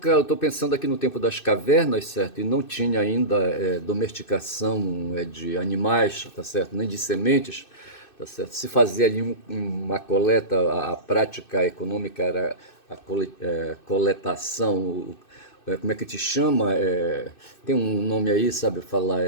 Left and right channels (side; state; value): right; late; 2.6 ms